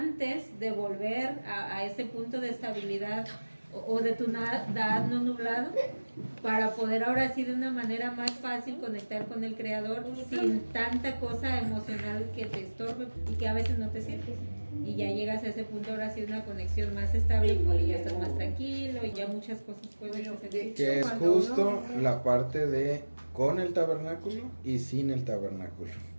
de volver a ese punto de estabilidad o de tu Da'at no nublado, para poder ahora sí de una manera más fácil conectar con el Creador sin tanta cosa emocional que te estorbe y que a veces no te sirve. Y ya llegas a ese punto ahora sí una conexión más estable porque ya estás más tranquilo y ya muchas cosas pueden hacer. Que es justo la parte de con el tabernáculo y sin el tabernáculo.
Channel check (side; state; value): both; inverted; correlation -1.00